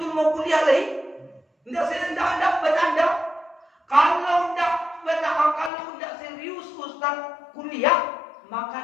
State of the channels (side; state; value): right; drops out; at 5.7 s